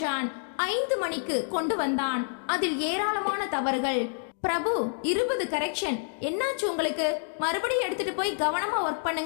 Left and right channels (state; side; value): silent; right; digital silence